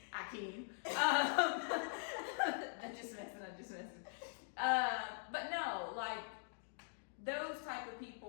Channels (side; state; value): right; silent; digital silence